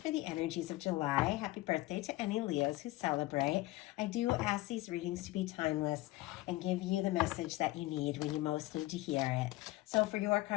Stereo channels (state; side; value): quieter; right; 18.8 dB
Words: for the energies of July. Happy birthday to any Leos who celebrate. I do ask these readings to be timeless and give you the message that you need when you most need to hear it. So for your